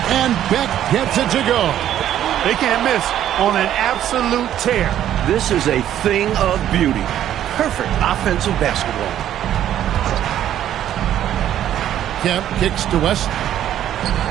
and Beck gets it to go. They can't miss on an absolute tear. This is a thing of beauty. Perfect offensive basketball. Kemp kicks to West.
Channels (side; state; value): left; quieter; 11.3 dB